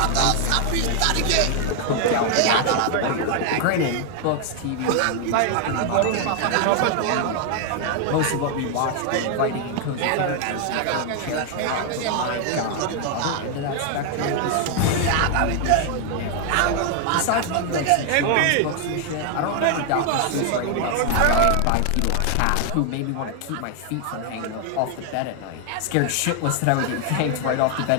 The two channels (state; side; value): different; both; correlation 0.00